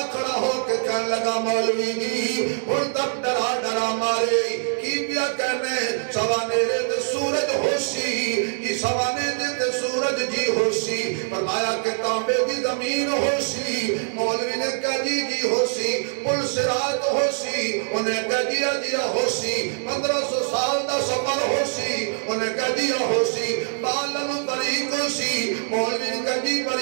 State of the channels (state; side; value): silent; left; digital silence